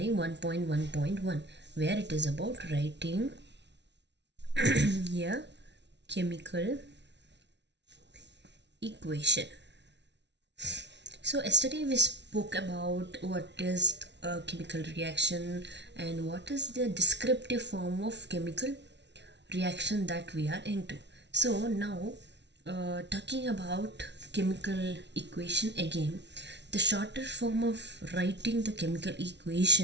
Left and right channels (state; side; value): late; left; 0.51 ms